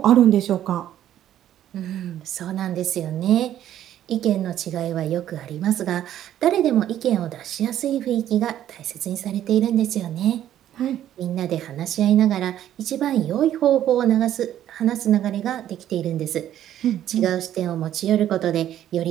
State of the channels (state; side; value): quieter; left; 11.6 dB